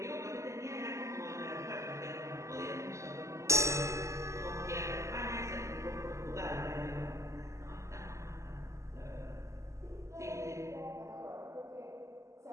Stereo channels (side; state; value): left; late; 0.14 ms